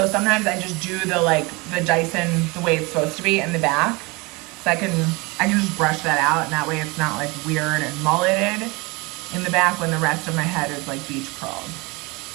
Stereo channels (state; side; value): quieter; left; 25.8 dB